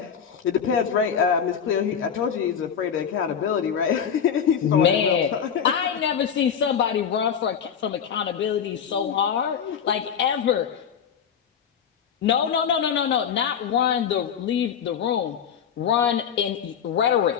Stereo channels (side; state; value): right; quieter; 7.8 dB